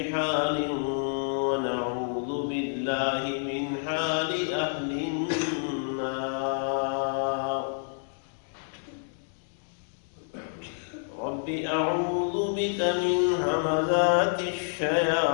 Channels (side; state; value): right; silent; digital silence